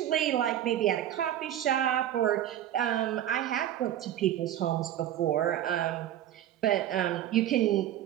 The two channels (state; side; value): quieter; left; 11.7 dB